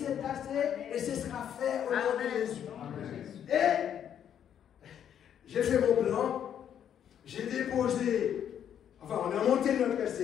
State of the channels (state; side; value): quieter; right; 9.3 dB